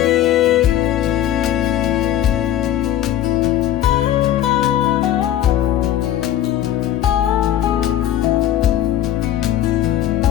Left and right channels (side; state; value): right; quieter; 11.9 dB